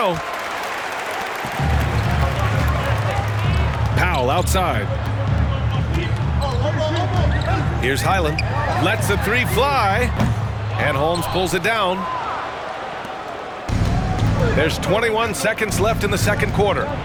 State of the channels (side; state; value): both; identical; correlation 1.00